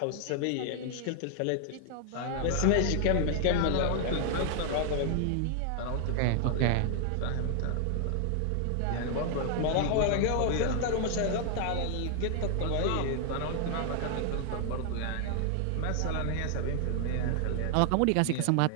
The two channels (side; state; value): both; different; correlation 0.00